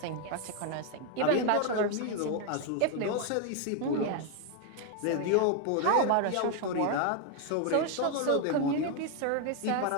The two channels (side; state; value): both; different; correlation 0.01